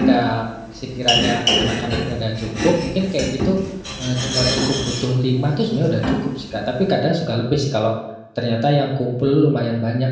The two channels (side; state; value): both; identical; correlation 1.00